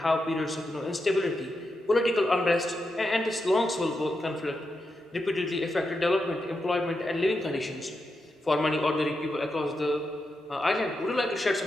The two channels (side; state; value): both; normal; correlation 0.86